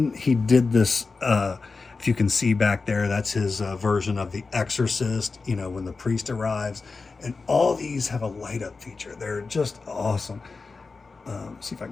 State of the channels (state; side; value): quieter; right; 4.2 dB